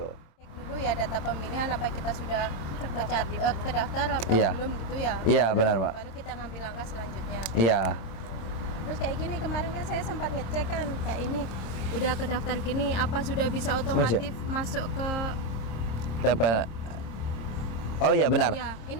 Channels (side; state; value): right; late; 26 ms